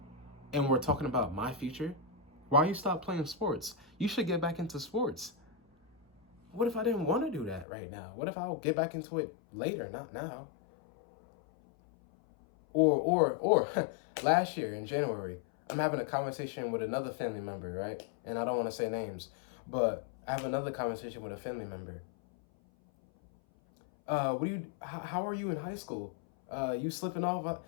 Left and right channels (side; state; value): right; drops out; at 7.7 s